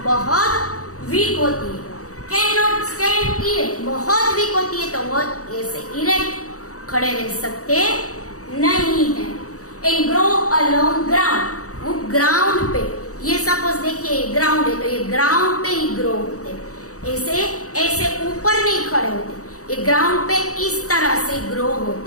बहुत वीक होती है। कैन नॉट स्टैंड इरेक्ट, बहुत वीक होती है तो वो ऐसे इरेक्ट खड़े रह सकते नहीं है। And grow along ground, ground पे, ये सपोज देखिए ग्राउंड है तो ये ग्राउंड पे ही ग्रो होते, ऐसे ऐसे ऊपर नहीं खड़े होते, ये ग्राउंड पे इस तरह से ग्रो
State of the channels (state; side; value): late; right; 0.65 ms